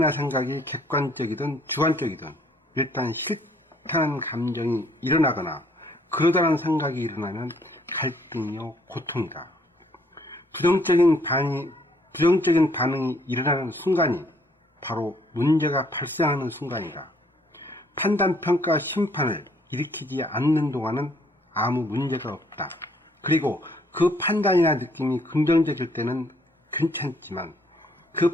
생각이 객관적이든 주관적이든 일단 싫다는 감정이 일어나거나 그러다는 생각이 일어나면 갈등이요 고통이다. 부정적인 반응이 일어나는 순간이 바로 문제가 발생하는 순간이다. 판단, 평가, 심판을 일으키지 않는 동안은 아무 문제가 없다. 그리고 그 판단이나 느낌이 긍정적일 때는 괜찮지만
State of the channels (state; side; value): normal; both; correlation 0.65